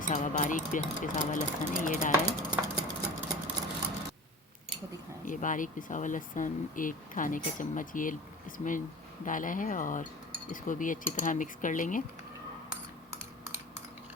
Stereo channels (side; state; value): both; normal; correlation 0.37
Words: हुआ बारीक पिसा हुआ लहसुन है, ये डाला है। ये बारीक पिसा हुआ लहसुन 1 खाने का चम्मच ये इसमें डाला है, और इसको भी अच्छी तरह मिक्स कर लेंगे।